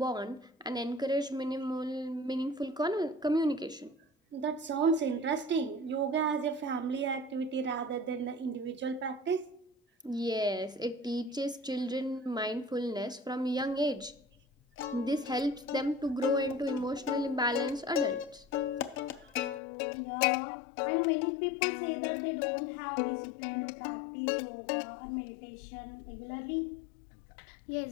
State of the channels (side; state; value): right; drops out; at 19.6 s